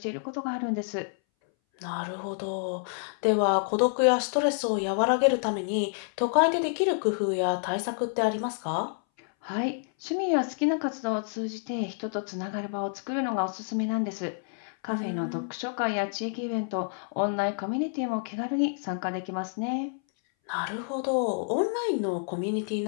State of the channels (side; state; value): right; silent; 59 dB below the other